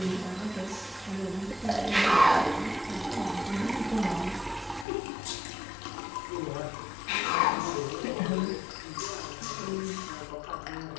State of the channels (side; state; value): right; drops out; at 4.9 s